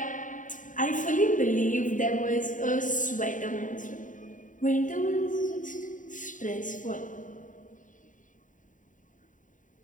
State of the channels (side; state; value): right; late; 0.38 ms